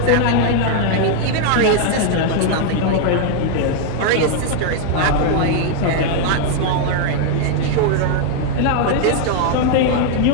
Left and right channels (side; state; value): both; different; correlation 0.00